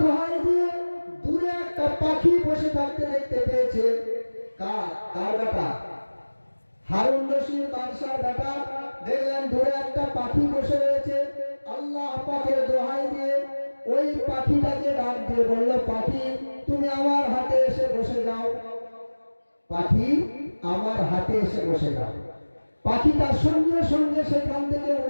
দোহাই দিয়ে দূরে একটা পাখি বসে থাকতে দেখতে পেয়েছে। কার বেটা? হারুন রশিদ বাদশার বেটা। দেখলেন দূরে একটা পাখি বসে রয়েছে। আল্লাহ পাকের দোহাই দিয়ে ওই পাখিটাকে ডাক দিয়ে বলল, পাখি তুমি আমার হাতে এসে বসে যাও। পাখি আমার হাতে এসে বসে যাও। পাখিটা সঙ্গে সঙ্গে সেখান থেকে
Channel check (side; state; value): both; inverted; correlation -1.00